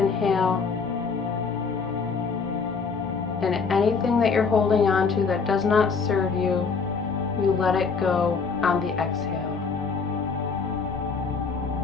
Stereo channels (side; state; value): right; quieter; 5.1 dB